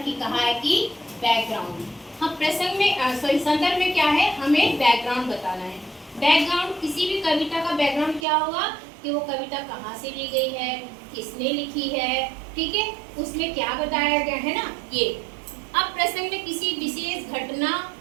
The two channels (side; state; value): left; drops out; at 8.2 s